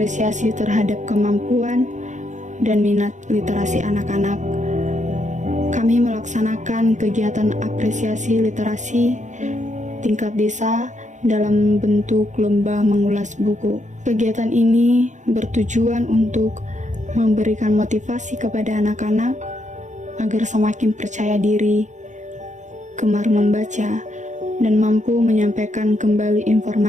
terhadap kemampuan dan minat literasi anak-anak, kami melaksanakan kegiatan apresiasi literasi tingkat desa dalam bentuk lomba mengulas buku. Kegiatan ini bertujuan untuk memberikan motivasi kepada anak-anak agar semakin percaya diri, gemar membaca, dan mampu menyampaikan kembali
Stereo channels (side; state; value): left; late; 0.35 ms